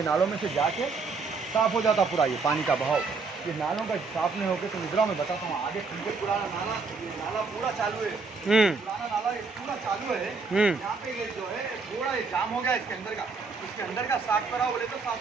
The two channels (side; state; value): left; quieter; 4.4 dB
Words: नालों में से जाके साफ हो जाता पूरा, ये पानी का बहाव। ये नालों का साफ नहीं होकर तो निद्रा में बताता हूँ आगे तुमको। पुराना नाला, ये नाला पूरा चालू है, पुराना नाला ये पूरा चालू है। यहाँ पे ये जो है पूरा ये जाम हो गया इसके अंदर का, इसके अंदर का साफ कराओ बोले तो साफ